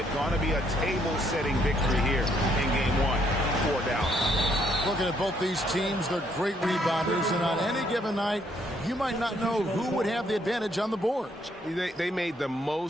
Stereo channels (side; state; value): both; normal; correlation 0.70